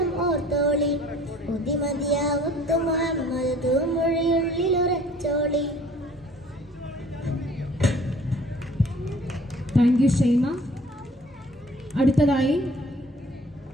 ഓർത്തോളി. മതിമതിയാവുത്ത് മുഹമ്മദ് തൂമൊഴിയുള്ളിൽ ഉറച്ചോളി. Thank you Shaima. അടുത്തതായി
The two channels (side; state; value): both; normal; correlation 0.53